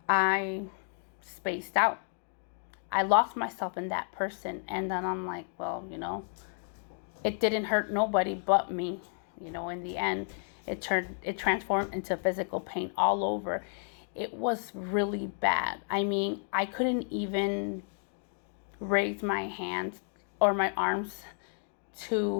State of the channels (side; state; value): right; silent; 57 dB below the other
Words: I spaced out. I lost myself in that person. And then I'm like, well, it didn't hurt nobody but me. In the end, it transformed into physical pain all over. It was really bad. I mean, I couldn't even raise my hands or my arms